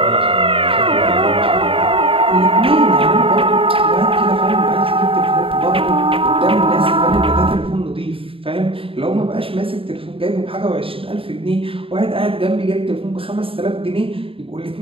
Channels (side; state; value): left; late; 0.27 ms